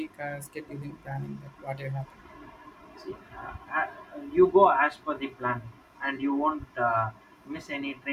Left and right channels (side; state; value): both; identical; correlation 1.00